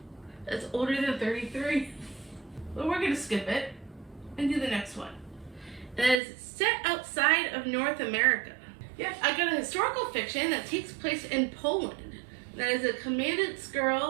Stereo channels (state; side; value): drops out; left; at 6.2 s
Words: that's older than 33. but we're going to skip it and do the next one. It is set outside of North America. Yes, I got a historical fiction that takes place in Poland. That is A Commandant's